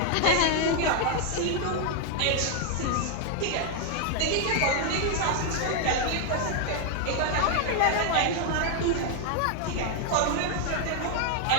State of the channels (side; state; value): both; different; correlation 0.00